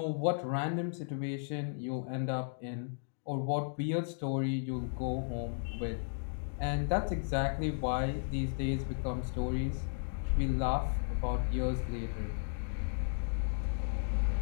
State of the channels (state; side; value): silent; right; digital silence